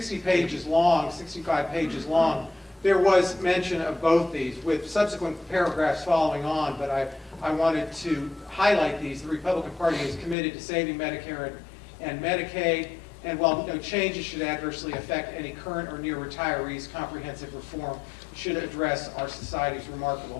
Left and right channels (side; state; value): right; drops out; at 10.4 s